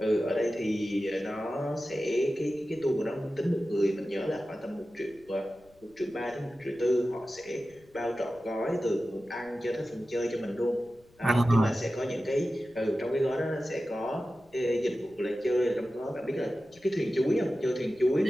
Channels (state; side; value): noise; left; rumble, 29 dB below the sound